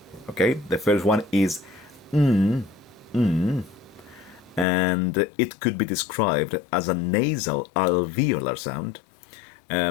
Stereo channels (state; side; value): drops out; right; at 4.7 s